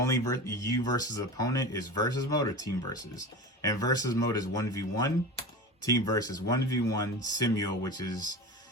you versus opponent is versus mode or team versus. And versus mode is 1v1. Team versus 1v1 simul, which is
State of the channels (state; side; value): normal; both; correlation 0.30